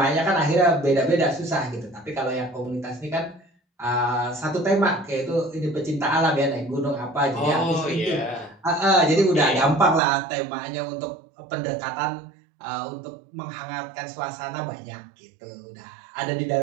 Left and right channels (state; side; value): drops out; left; at 10.0 s